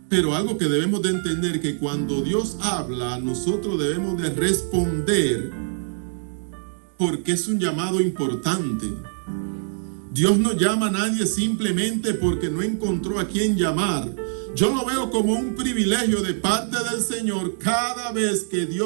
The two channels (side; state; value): left; silent; digital silence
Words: Pero algo que debemos de entender, que cuando Dios habla, nosotros debemos de responder, porque es un llamado importante. Dios no llama a nadie simplemente porque no encontró a quien llamar. Yo lo veo como un privilegio de parte del Señor cada vez que